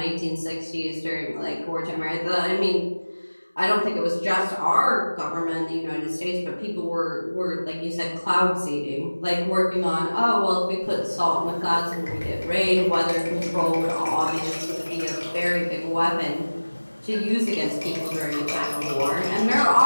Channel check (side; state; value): both; inverted; correlation -1.00